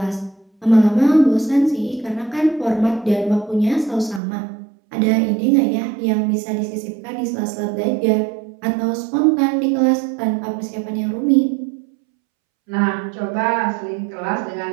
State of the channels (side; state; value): left; drops out; at 4.2 s